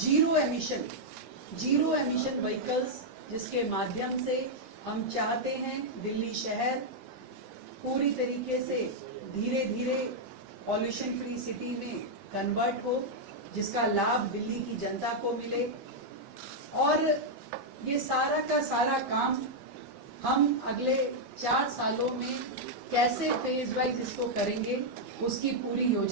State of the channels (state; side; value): late; left; 15 ms